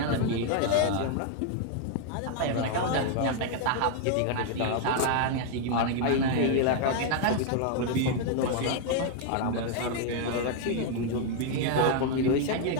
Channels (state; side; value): different; both; correlation 0.00